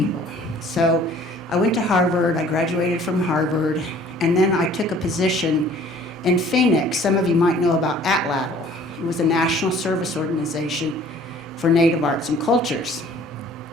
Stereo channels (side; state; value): both; normal; correlation 0.53